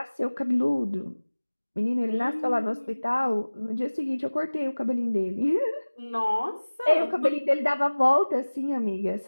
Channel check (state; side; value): inverted; both; correlation -1.00